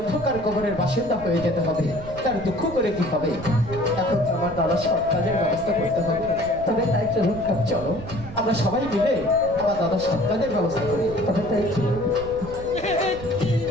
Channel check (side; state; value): right; noise; rumble, 13 dB below the sound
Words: কবরের বাসিন্দা হয়ে যেতে হবে। তার দুঃখ করে কি হবে? এখন তো আমার দাদা সব কাজের ব্যবস্থা করতে হবে। তবে তাই চলুন, চলো আমরা সবাই মিলে আমার দাদা সব কাজের ব্যবস্থা করি। তবে তাই চলুন।